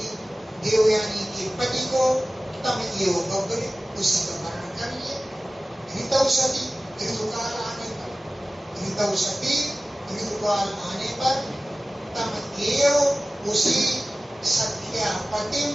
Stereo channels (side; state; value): both; normal; correlation 0.96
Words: देवयानी के पति को तम एवं बब्बरे उसी का वर्णन कर लिए। ऋतौसती ऋतुकाल आने पर ऋतुकाल आने पर तम एवं उसी सख्या पति